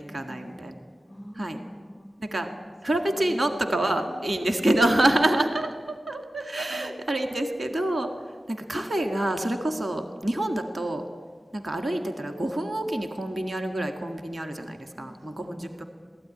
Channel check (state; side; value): normal; both; correlation 0.94